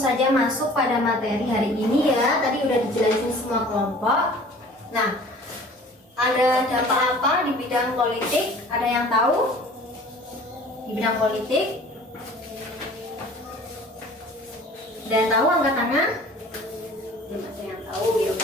masuk pada materi hari ini ya. Tadi udah dijelasin semua kelompok. Nah, ada dampak apa di bidang politik? Ada yang tahu? Di bidang politik? Ada yang tahu angkat tangan? Belum ada yang tahu, ya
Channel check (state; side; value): normal; both; correlation 0.47